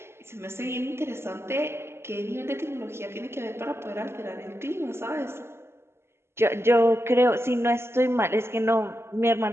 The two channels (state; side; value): late; left; 0.12 ms